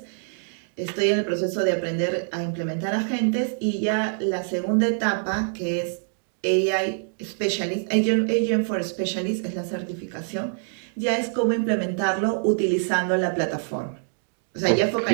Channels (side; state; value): left; silent; digital silence